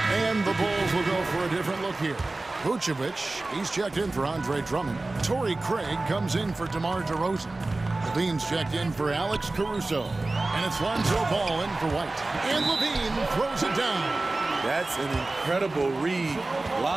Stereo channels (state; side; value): quieter; left; 3.1 dB